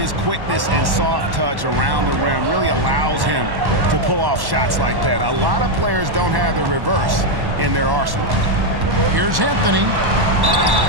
quickness and soft touch around the rim really allows him to pull off shots like that. A lot of players don't have the reverse in their arsenal. Here's Anthony.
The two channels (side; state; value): left; late; 1.1 ms